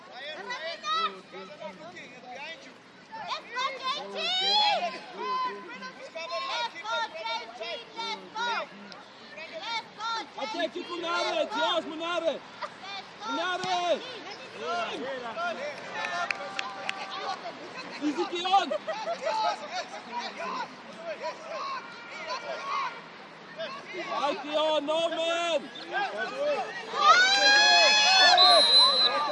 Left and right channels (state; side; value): identical; both; correlation 1.00